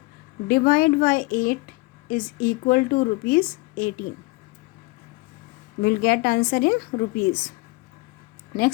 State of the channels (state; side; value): quieter; right; 23.9 dB